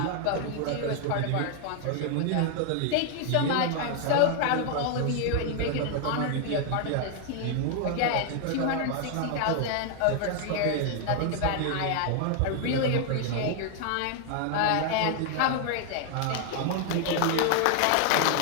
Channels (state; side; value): different; both; correlation 0.00